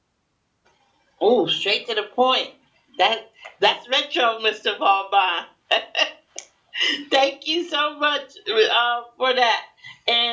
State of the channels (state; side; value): identical; both; correlation 1.00